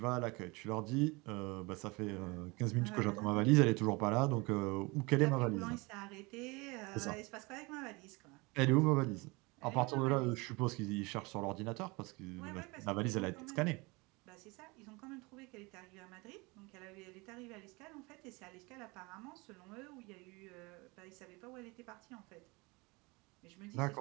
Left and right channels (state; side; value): quieter; left; 25.9 dB